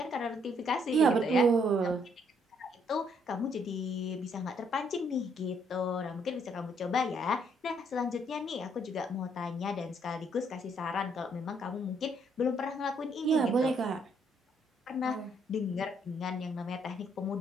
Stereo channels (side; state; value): both; normal; correlation 0.69